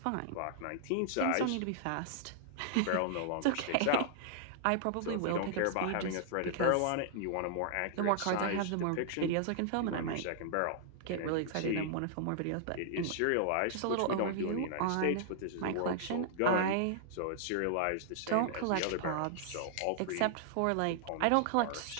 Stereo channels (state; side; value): different; both; correlation -0.01